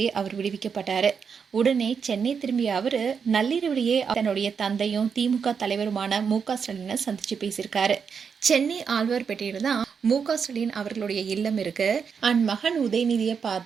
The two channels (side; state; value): left; quieter; 6.4 dB